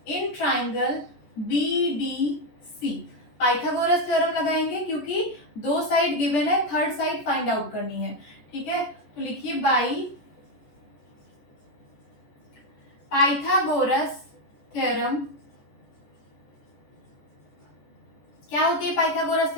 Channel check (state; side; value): late; right; 14 ms